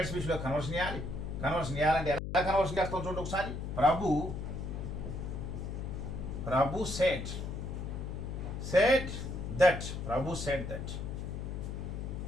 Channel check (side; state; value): left; noise; hum, 5 dB below the sound